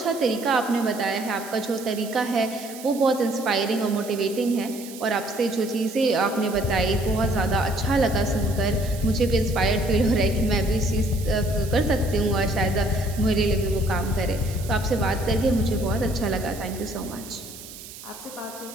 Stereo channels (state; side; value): noise; right; hiss, 15 dB below the sound